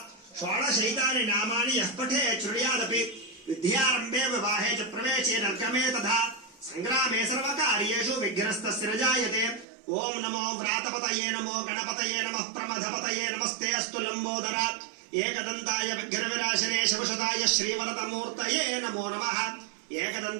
షోడశైతాని నామాని యః పఠేత్ శృణుయాదపి విద్యారంభే వివాహే చ ప్రవేశే నర్కమే తథా సంగ్రామే సర్వకార్యేషు విఘ్నస్తస్య న జాయతే. ఓం నమో వ్రాతపతయే నమో గణపతయే నమః ప్రమథపతయే నమస్తే అస్తు లంబోదర ఏకదంతాయ విఘ్నవినాశనే శివశతాయ శ్రీవరదమూర్తయే నమో నమః.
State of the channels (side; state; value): left; drops out; at 9.7 s